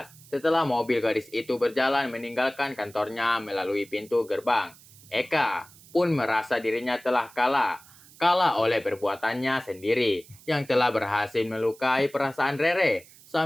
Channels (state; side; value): noise; right; hiss, 23 dB below the sound